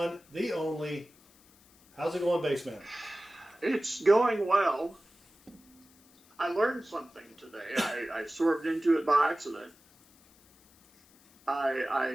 the only. How's it going, Baseman? It's going well. I learned something today. I swerved into it by accident.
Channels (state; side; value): noise; left; hiss, 29 dB below the sound